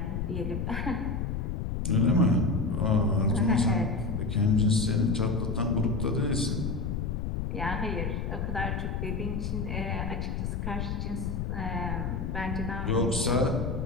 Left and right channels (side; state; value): left; noise; rumble, 2 dB below the sound